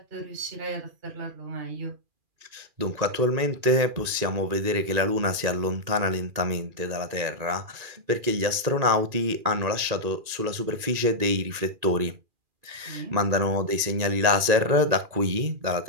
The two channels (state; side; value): late; left; 2.4 ms